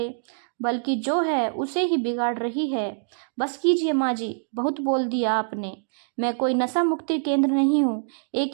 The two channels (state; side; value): silent; left; digital silence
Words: बल्कि जो है उसे ही बिगाड़ रही है। बस कीजिए माँ जी, बहुत बोल दिया आपने। मैं कोई नशा मुक्ति केंद्र नहीं हूँ,